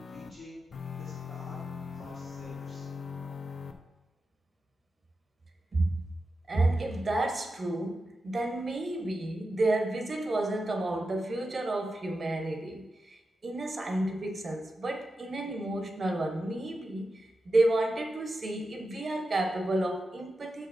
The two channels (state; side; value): normal; both; correlation 0.90